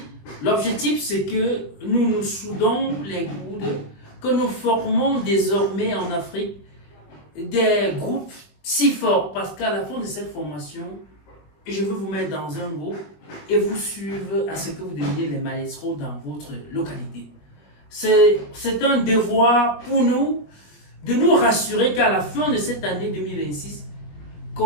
l'objectif c'est que nous nous soudons les coudes, que nous formons désormais en Afrique des groupes si forts parce qu'à la fin de cette formation, je veux vous mettre dans un groupe et vous suivre à ce que vous deveniez les maestros dans votre localité. C'est un devoir pour nous de nous rassurer qu'à la fin de cette année 2026,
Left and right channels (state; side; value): late; right; 20 ms